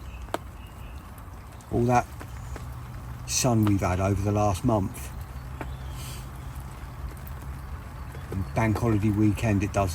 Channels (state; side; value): identical; both; correlation 1.00